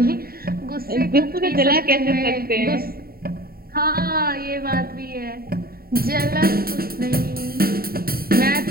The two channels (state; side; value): late; left; 0.43 ms